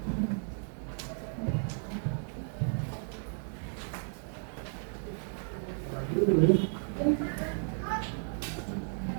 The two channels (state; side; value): silent; left; 55 dB below the other